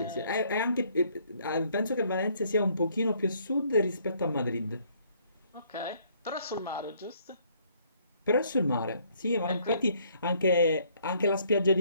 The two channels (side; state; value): both; inverted; correlation -0.65